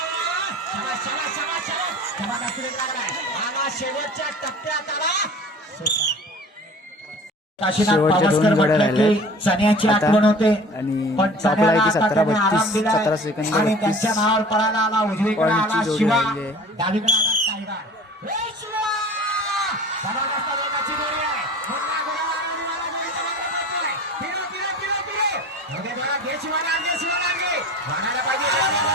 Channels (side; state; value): both; normal; correlation 0.42